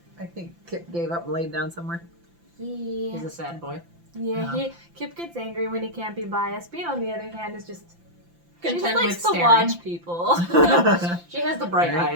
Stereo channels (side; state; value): left; late; 5.8 ms